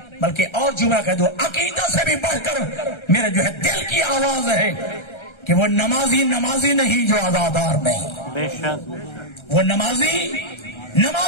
بلکہ اور جملہ کہہ دو, عقیدہ سے بھی بڑھ کر میرے جو ہے دل کی آواز ہے کہ وہ نمازی نہیں جو عزادار نہیں, بے شک وہ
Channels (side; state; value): right; late; 1.3 ms